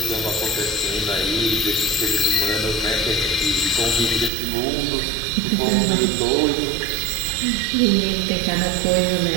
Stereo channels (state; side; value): drops out; left; at 4.3 s